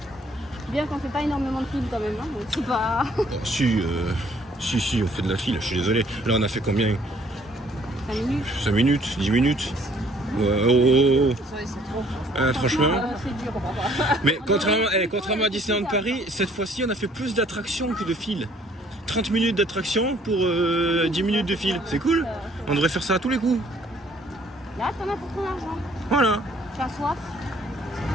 Bien qu'on fait pas énormément de films quand même, hein, donc c'est pas... Si, on fait de la file, je suis désolé. Là on a fait combien? 5 minutes. 5 minutes, 10 minutes. Ouais, franchement. C'est dur. Mais contrairement à Disneyland Paris, cette fois-ci on a fait plus d'attractions que de fil. 30 minutes d'attraction pour 10 minutes de fil. C'est cool. On devrait faire ça à tous les coups. Là, t'en as pour ton argent. Voilà. Tu as soif?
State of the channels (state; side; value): normal; both; correlation 0.61